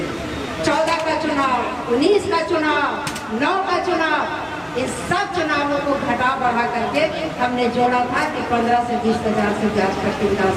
14 का चुनाव, 19 का चुनाव, 9 का चुनाव, इन सब चुनावों को घटा बढ़ा करके हमने जोड़ा था कि 15 से 20 हजार से बाजपट्टी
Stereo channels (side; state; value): both; identical; correlation 1.00